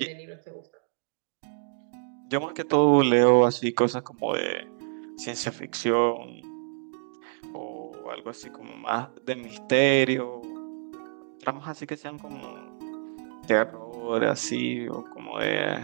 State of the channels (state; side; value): silent; left; digital silence